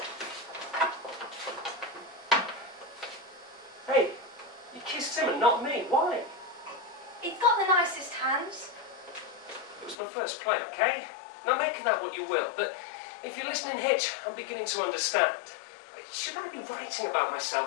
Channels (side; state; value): right; drops out; at 10.0 s